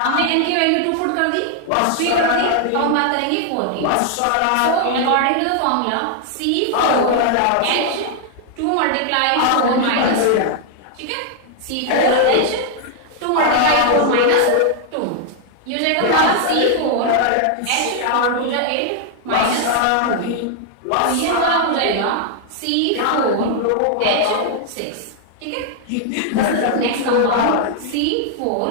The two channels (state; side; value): different; both; correlation 0.00